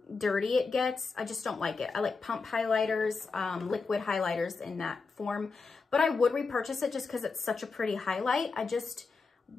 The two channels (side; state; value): right; quieter; 4.4 dB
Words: dirty it gets. I just don't like it. I like pump highlighters, liquid highlighters in that form. But I would repurchase it just because it's such a pretty highlight. I